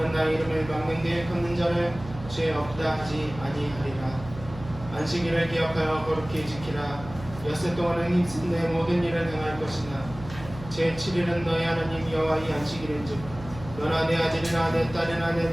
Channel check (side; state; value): right; noise; hum, 14 dB below the sound